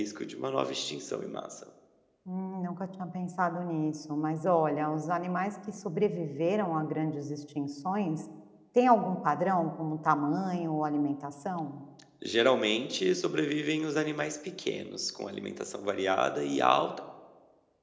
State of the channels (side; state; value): both; identical; correlation 1.00